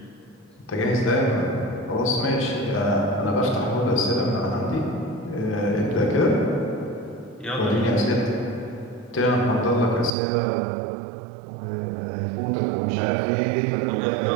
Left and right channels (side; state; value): left; drops out; at 10.1 s